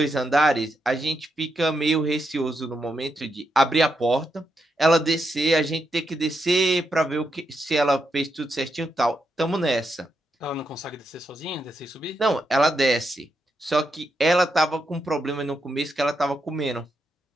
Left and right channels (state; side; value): normal; both; correlation 0.83